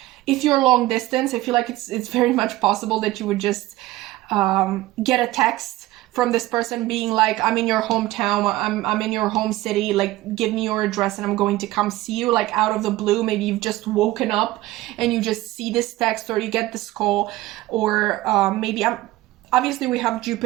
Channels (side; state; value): left; quieter; 17.3 dB